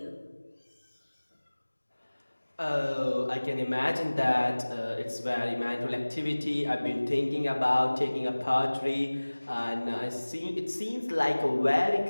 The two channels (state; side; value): inverted; both; correlation -1.00